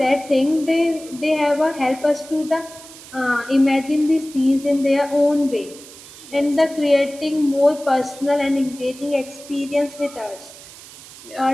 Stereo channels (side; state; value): right; noise; hiss, 18 dB below the sound